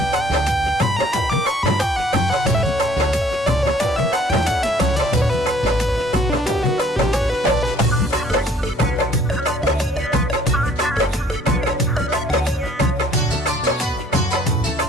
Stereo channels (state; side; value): normal; both; correlation 0.58